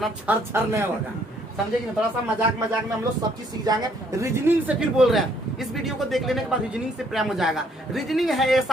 छर नहीं होगा, समझे कि नहीं? थोड़ा सा मजाक में हम लोग सब चीज सीख जाएंगे। रीजनिंग से फिर बोल रहे हैं, इस वीडियो को देख लेने के बाद रीजनिंग से प्रेम हो जाएगा। रीजनिंग है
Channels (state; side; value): normal; both; correlation 0.66